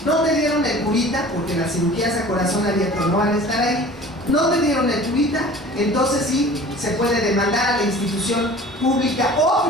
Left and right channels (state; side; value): normal; both; correlation 0.44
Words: no te dieron el curita, porque las cirugías a corazón abierto no van a estar ahí, no te dieron el curita, entonces sí se puede demandar a la institución pública o